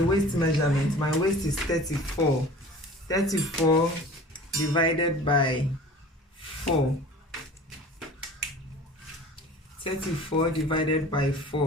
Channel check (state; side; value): normal; both; correlation 0.42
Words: measurement, my waist is 34. 34 divided by 4. 34 divided by